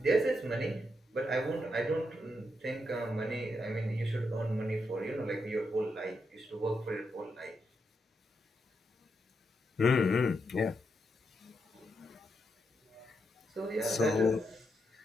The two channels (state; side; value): normal; both; correlation 0.82